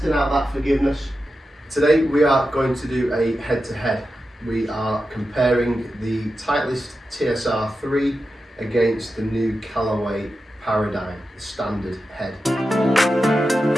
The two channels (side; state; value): both; normal; correlation 0.91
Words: out that forgiveness. Today we are going to do a head-to-head. We are comparing the Titleist TSR3 against the new Callaway Paradym, the standard head.